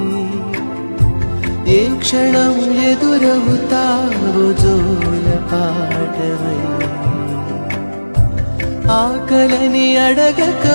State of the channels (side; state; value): both; inverted; correlation -1.00